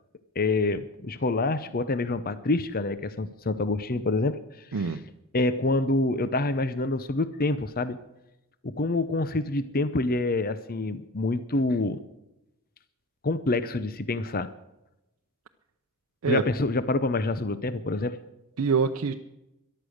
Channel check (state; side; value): normal; both; correlation 0.32